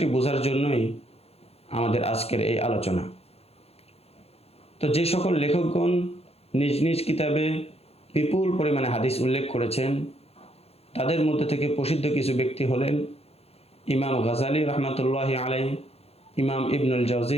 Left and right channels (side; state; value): right; late; 0.29 ms